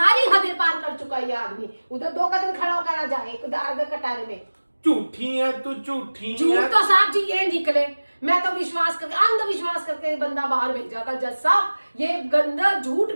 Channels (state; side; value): inverted; both; correlation -1.00